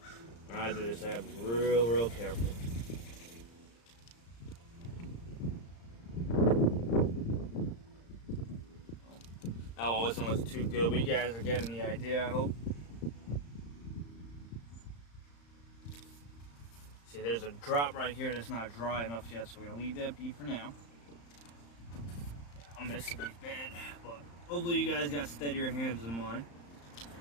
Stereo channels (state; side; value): late; right; 35 ms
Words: when I do this, I have to be real careful. That one wasn't too good, but you guys are getting the idea, I hope. See, there's a drop right here that's not dry enough yet, so we're gonna leave that be for now. I'm missing these bad, but hopefully you guys got steadier hands than mine.